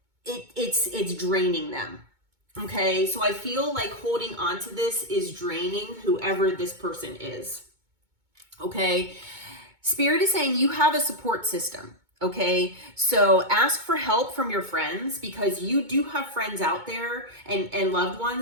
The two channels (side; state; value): left; late; 2.2 ms